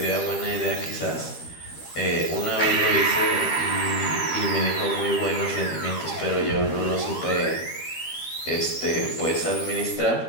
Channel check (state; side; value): late; right; 13 ms